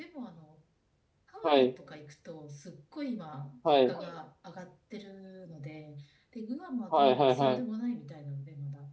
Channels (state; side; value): identical; both; correlation 1.00